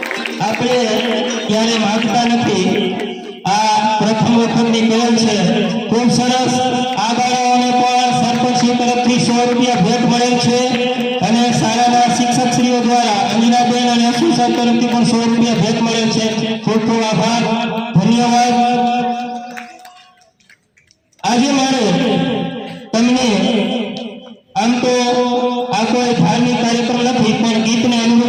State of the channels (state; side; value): identical; both; correlation 1.00